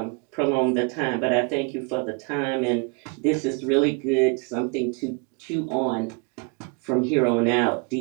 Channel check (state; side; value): quieter; left; 33.4 dB